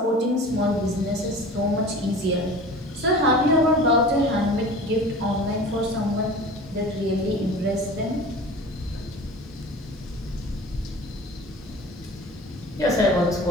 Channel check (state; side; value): normal; both; correlation 0.39